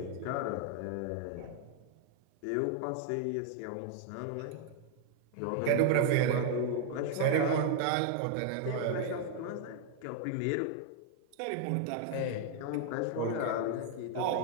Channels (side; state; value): both; different; correlation 0.00